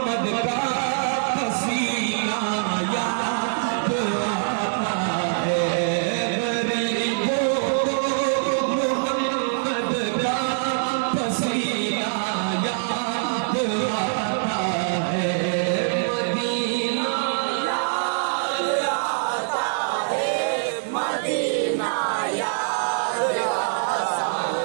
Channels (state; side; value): silent; left; 63 dB below the other